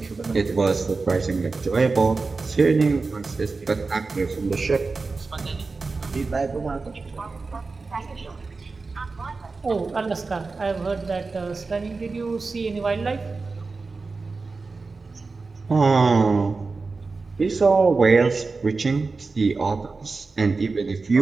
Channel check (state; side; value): quieter; left; 4.0 dB